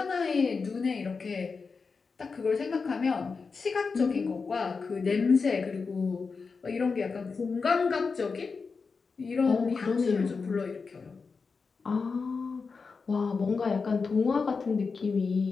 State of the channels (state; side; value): quieter; right; 4.8 dB